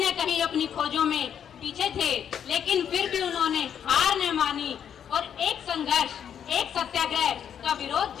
कहीं अपनी खोजों में पीछे थे। लेकिन फिर भी उन्होंने हार न मानी और एक संघर्ष, एक सत्याग्रह का विरोध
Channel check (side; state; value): right; quieter; 8.7 dB